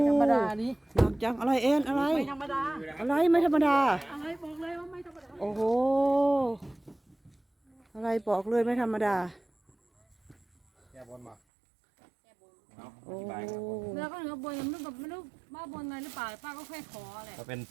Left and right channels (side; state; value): left; drops out; at 11.4 s